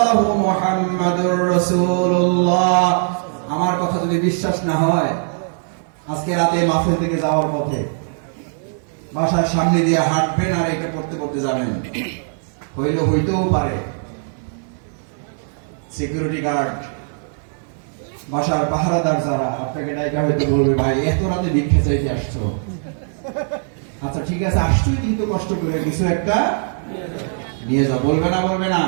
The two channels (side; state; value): left; silent; 62 dB below the other